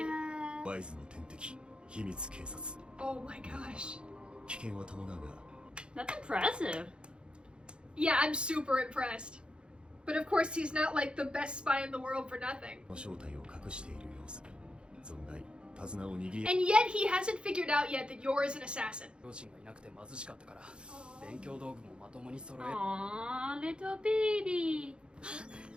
ワイズの天敵秘密警察 Oh my gosh. 危険は伴うが That's impressive. Yeah, I'm super impressed. But of course, he's not like the best spy in the world for nothing. 正体を隠している様子存外手綱を握り And yet, he hasn't figured out yet that Yor is an assassin. 両親がいなくて貧しかったから勉強道具もまともに揃え Aww, little baby.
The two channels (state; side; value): late; left; 0.054 ms